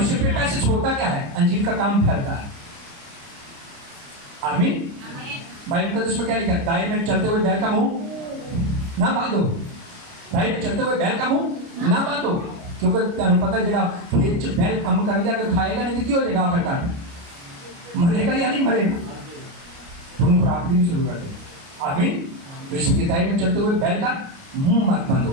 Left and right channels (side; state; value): left; late; 29 ms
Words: फिर पैसे छोड़ता क्या है? अंजील का काम फैलता है। आमीन। बाइबल मुकद्दस में क्या लिखा है? दाएं में चलते हुए बैल का मुंह ना बांधो। दाएं में चलते हुए बैल का मुंह ना बांधो, क्योंकि तुम पता जरा खेत च बैल कम कर दिया, अगर खाएगा नहीं तो क्या हो जाएगा? आखिरकार मरेगा या नहीं मरेगा? तुम खुराक भी नहीं शुरू कर दे। आमीन। इसलिए दाएं में चलते हुए बैल का मुंह मत